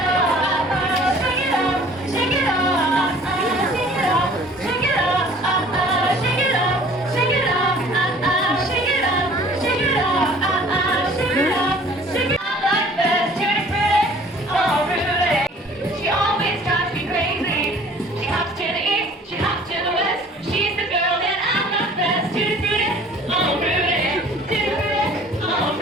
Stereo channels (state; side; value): normal; both; correlation 0.51